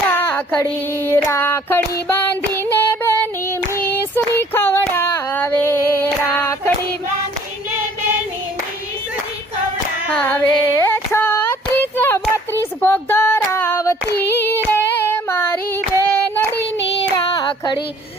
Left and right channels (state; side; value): normal; both; correlation 0.56